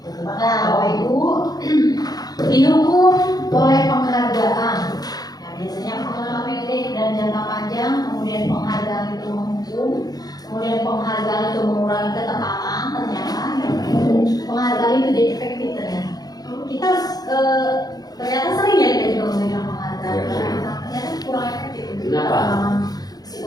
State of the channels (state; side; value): late; right; 0.19 ms